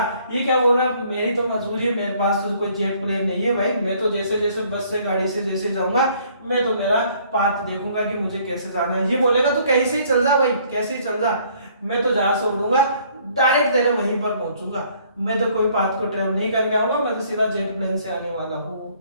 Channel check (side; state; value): both; inverted; correlation -0.61